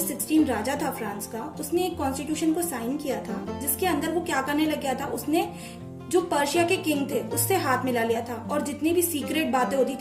16 राजा था फ्रांस का, उसने एक कॉन्स्टिट्यूशन को साइन किया था जिसके अंदर वो क्या करने लग गया था, उसने जो पर्शिया के किंग थे उससे हाथ मिला लिया था और जितनी भी सीक्रेट बातें होती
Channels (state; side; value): identical; both; correlation 1.00